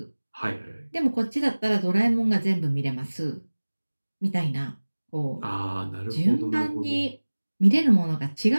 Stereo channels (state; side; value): inverted; both; correlation -1.00